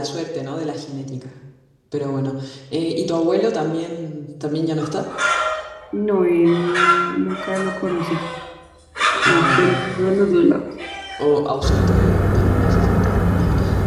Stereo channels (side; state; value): both; identical; correlation 1.00